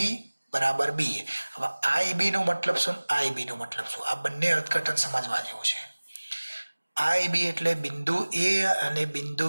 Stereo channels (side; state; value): both; inverted; correlation -1.00